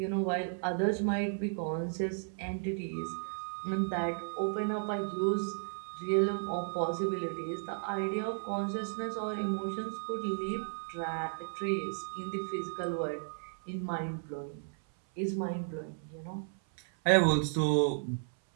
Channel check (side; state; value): left; silent; 55 dB below the other